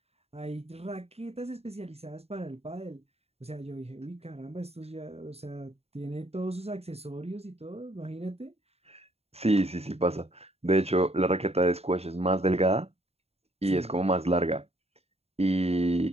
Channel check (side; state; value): left; late; 0.30 ms